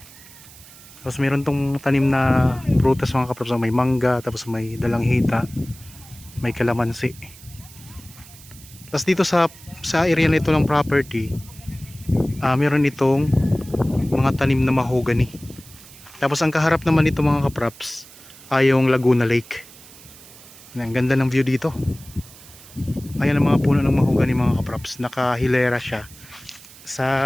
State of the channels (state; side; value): noise; right; hiss, 20 dB below the sound